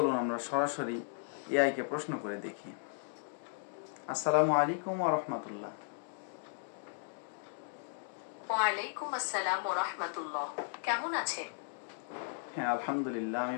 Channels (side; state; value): right; silent; digital silence